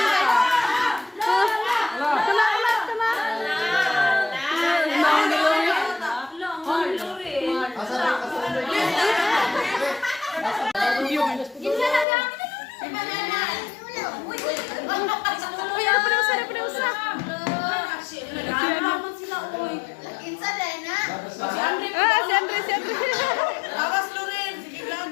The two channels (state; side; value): drops out; right; at 12.1 s